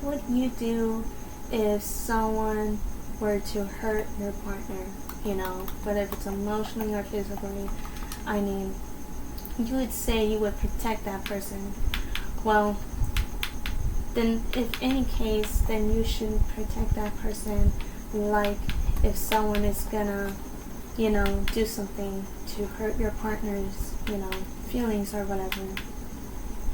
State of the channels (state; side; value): identical; both; correlation 1.00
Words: would you do if someone were to hurt your partner, whether if it's emotionally or physically. I mean, you would say you would protect that person. Well, then if any case, then you should protect that person. Like if someone is gonna, do something to hurt your partner's, feelings or whatever.